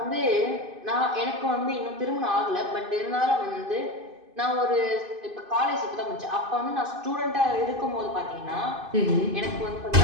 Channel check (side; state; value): left; late; 2.5 ms